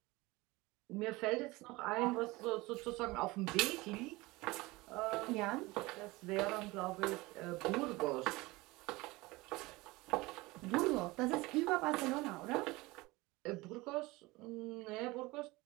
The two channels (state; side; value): quieter; left; 21.8 dB